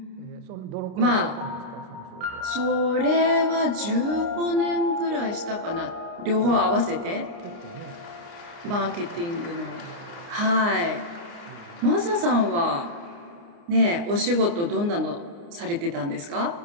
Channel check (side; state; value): left; late; 29 ms